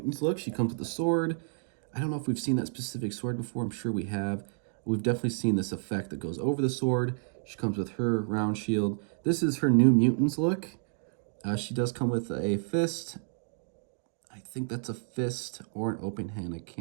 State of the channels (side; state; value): left; silent; digital silence